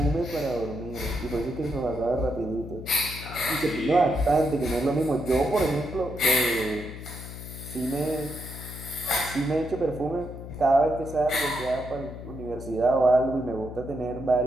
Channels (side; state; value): left; noise; hum, 11 dB below the sound